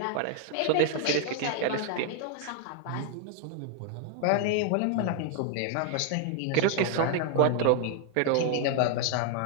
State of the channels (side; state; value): both; different; correlation 0.00